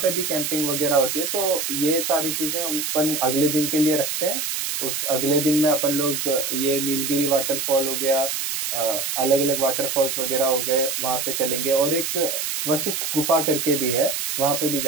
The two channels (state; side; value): noise; right; hiss, 2 dB below the sound